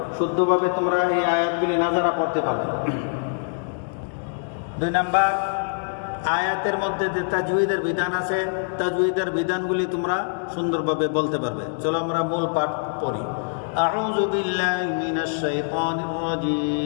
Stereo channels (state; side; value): silent; right; digital silence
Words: শুদ্ধভাবে তোমরা এই আয়াতগুলি নাজারা পড়তে পারবে। 2 নাম্বার, আয়াতের মধ্যে যে তাজউইদের বিধান আছে, তাজউইদের বিধানগুলি তোমরা সুন্দরভাবে বলতে পারবে। চলো আমরা মূল পাঠ পড়ি। আউযু বিল্লাহি মিনাশ শাইতানির